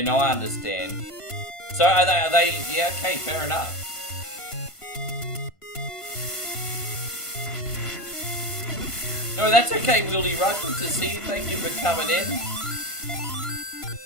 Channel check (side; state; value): right; late; 1.5 ms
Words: no, I understand. So, are they... Yeah, okay, fair enough. No, that's okay, Wieldy Rug. Good to see you. Thank you for coming in.